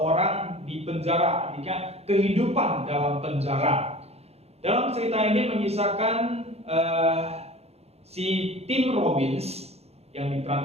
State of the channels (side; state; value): left; late; 0.30 ms